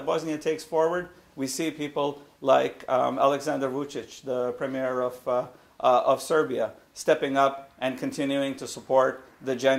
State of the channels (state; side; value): identical; both; correlation 1.00